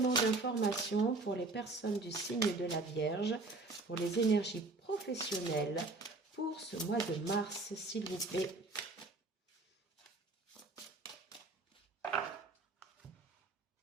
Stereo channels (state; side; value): quieter; left; 3.3 dB